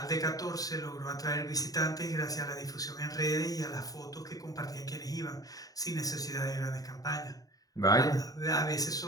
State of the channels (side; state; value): right; late; 0.18 ms